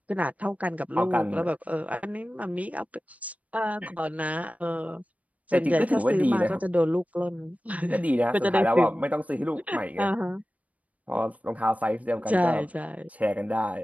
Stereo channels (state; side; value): late; left; 0.069 ms